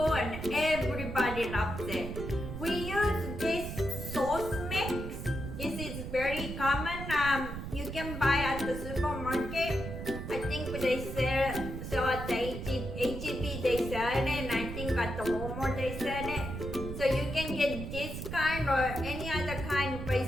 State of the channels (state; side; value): noise; right; rumble, 7 dB below the sound